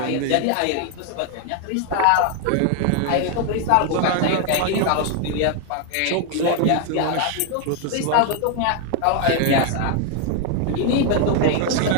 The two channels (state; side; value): different; both; correlation 0.01